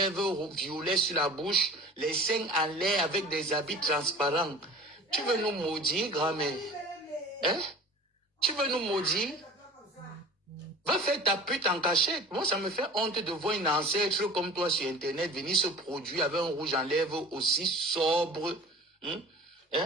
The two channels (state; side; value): normal; both; correlation 0.41